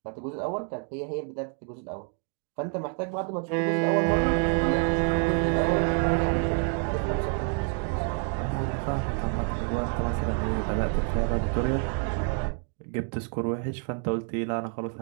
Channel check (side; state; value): left; quieter; 39.3 dB